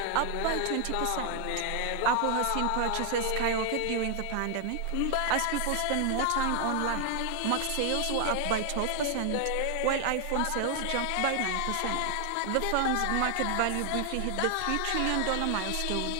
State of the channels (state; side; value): different; both; correlation 0.00